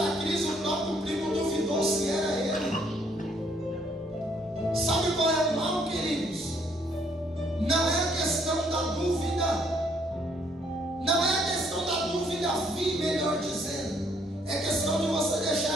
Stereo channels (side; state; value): both; normal; correlation 0.67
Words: crise o próprio primo duvidou se era ele. Sabe qual é o mal, queridos? Não é a questão da dúvida. Não é a questão da dúvida vir, melhor dizendo. É questão de você